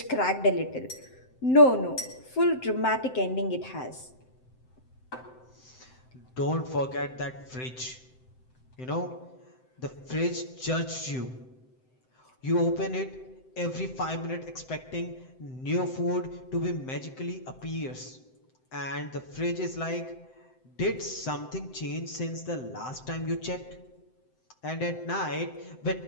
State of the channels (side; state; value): right; late; 7.8 ms